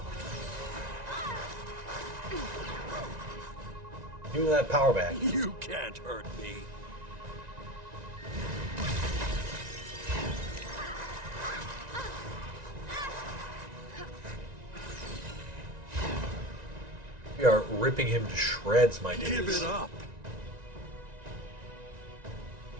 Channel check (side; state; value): left; late; 1.9 ms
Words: Give me that power back. You can't hurt me. We are ripping him to shreds, my dudes. Give it up.